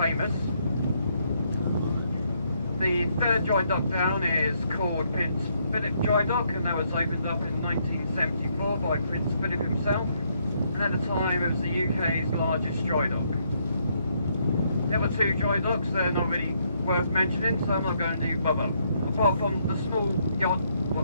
The third dry dock down is called Prince Philip Dry Dock, and that was opened up in 1974 by Prince Philip himself, and at the time it was the UK's largest dry dock. The other two dry docks, they're not really worth mentioning, so I'm not going to bother. Apart from the small yacht,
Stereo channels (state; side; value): inverted; both; correlation -0.73